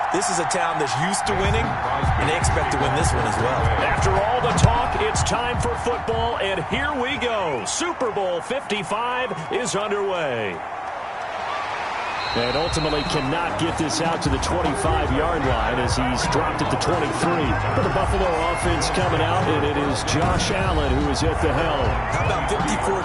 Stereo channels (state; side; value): identical; both; correlation 1.00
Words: this is a town that's used to winning, and they expect to win this one as well. After all the talk, it's time for football, and here we go. Super Bowl 55 is underway. And ultimately cannot get this out to the 25-yard line as he's dropped at the 23. For the Buffalo offense coming out, and it is Josh Allen who is at the helm. How about 54